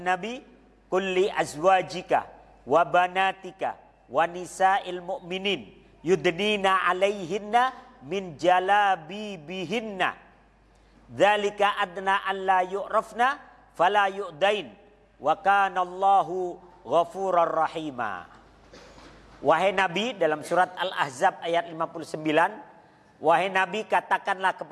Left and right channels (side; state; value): both; identical; correlation 1.00